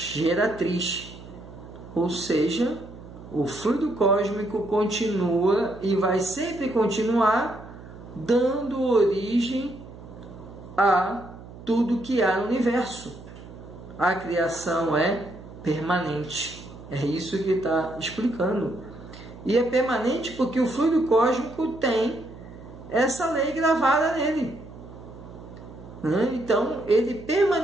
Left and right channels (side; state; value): right; noise; hum, 16 dB below the sound